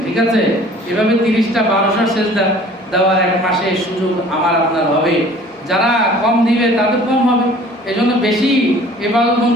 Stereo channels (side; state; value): both; normal; correlation 0.50